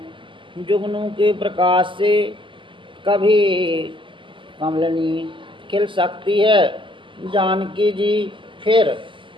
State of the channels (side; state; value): left; late; 0.25 ms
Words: जुगनू के प्रकाश से कभी कमलनी खिल सकती है। जानकी जी फिर